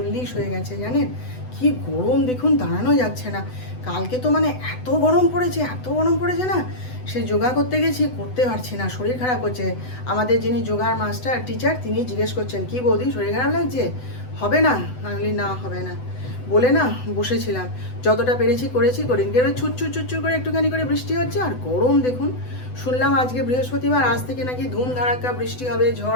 হয়ে গেছে। জানেন কি গরম দেখুন, দাঁড়ানো যাচ্ছে না। কালকে তো মানে এত গরম পড়েছে, এত গরম পড়েছে না, সে যোগা করতে গেছি, করতে পারছি না, শরীর খারাপ হচ্ছে। আমাদের যিনি যোগার মাস্টার টিচার, তিনি জিজ্ঞেস করছেন কি বৌদি শরীর খারাপ লাগছে, হবে না? আমি বলি না হবে না বলে না বসেছিলাম, যতটা পেরেছি করেছি, করিনি। এবার ছুটছুট করে একটুখানি করে বৃষ্টি হচ্ছে, আর গরম দেখুন। শুনলাম আজকে বৃহস্পতিবার, আজ থেকে নাকি ধুম ধাড়াক্কা বৃষ্টি হবে,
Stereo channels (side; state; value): right; late; 8.0 ms